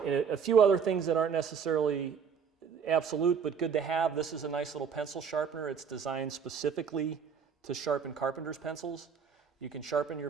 few other things that aren't necessarily absolute but good to have. This is a nice little pencil sharpener. It's designed specifically to sharpen carpenter's pencils. You can sharpen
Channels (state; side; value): quieter; left; 6.7 dB